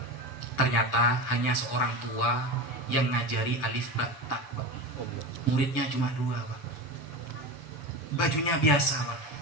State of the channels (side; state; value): right; late; 6.9 ms